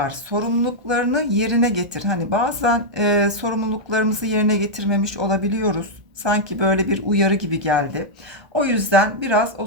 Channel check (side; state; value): left; late; 1.3 ms